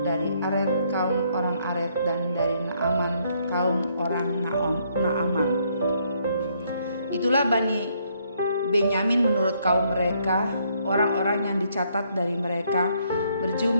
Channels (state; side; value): inverted; both; correlation -0.70